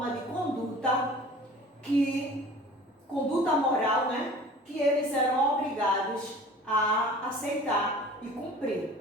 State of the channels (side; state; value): both; normal; correlation 0.45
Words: de conduta moral, né, que eles eram obrigados a aceitar e cumprir,